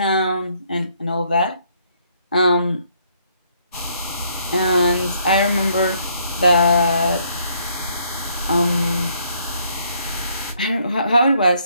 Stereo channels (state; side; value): inverted; both; correlation -0.68